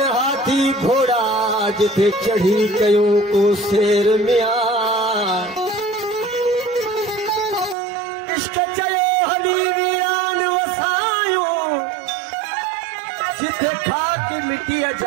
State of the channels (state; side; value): drops out; left; at 7.8 s